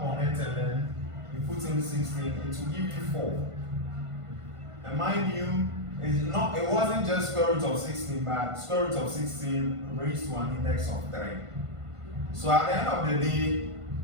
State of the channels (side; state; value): left; late; 1.5 ms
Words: on it and then you put in 16, it will give you 4. And mind you, it wasn't just square root of 16, but square root of 16 raised to an index of 3. So at the end of the day,